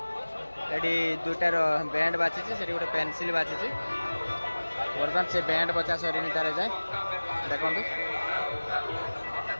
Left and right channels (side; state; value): both; inverted; correlation -1.00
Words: ଏଠି ଦୁଇଟାର ବ୍ୟାଣ୍ଡ ବାଛିଛି ସେଠି ଗୋଟେ ପେନସିଲ୍ ବାଛିଛି ବର୍ତ୍ତମାନ ସେ ବ୍ୟାଣ୍ଡ ବଚା ସରିନି ତାର ଯାଏ ଦେଖନ୍ତୁ